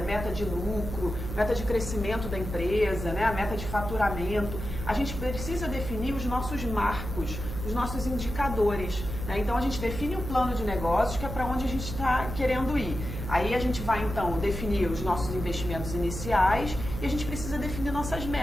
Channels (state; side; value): noise; right; hum, 6 dB below the sound